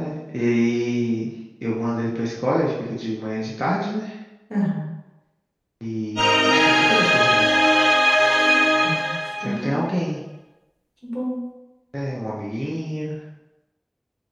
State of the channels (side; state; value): both; identical; correlation 1.00